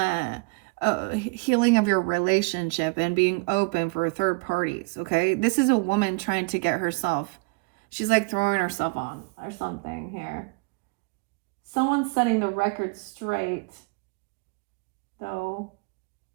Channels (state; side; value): quieter; left; 30.9 dB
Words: healing of your relationship and being open for third parties. Okay, this is a woman trying to get herself, she's like throwing herself on or something here. Someone's setting the record straight though,